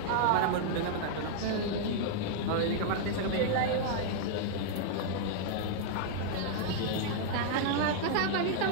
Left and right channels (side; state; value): both; different; correlation -0.01